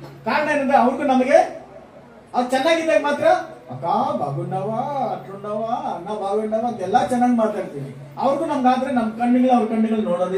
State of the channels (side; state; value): both; identical; correlation 1.00